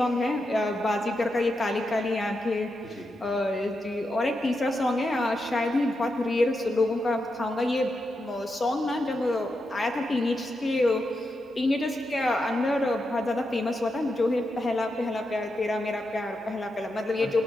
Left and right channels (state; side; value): normal; both; correlation 0.86